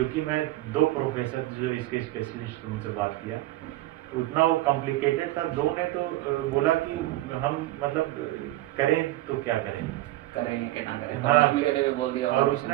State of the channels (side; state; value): left; quieter; 16.9 dB